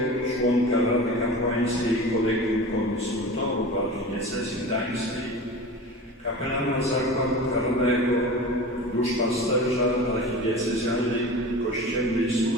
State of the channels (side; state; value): both; normal; correlation 0.34